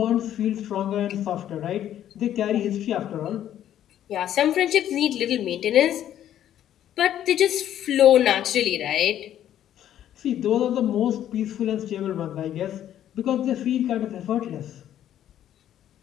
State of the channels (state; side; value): quieter; right; 11.2 dB